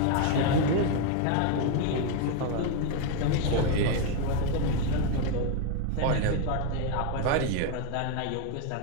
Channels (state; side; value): different; both; correlation 0.01